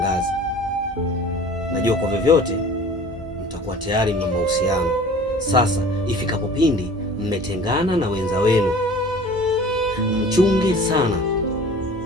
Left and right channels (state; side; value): normal; both; correlation 0.45